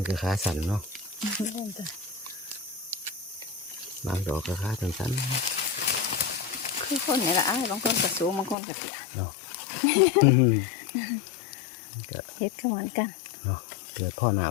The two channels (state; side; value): drops out; right; at 8.6 s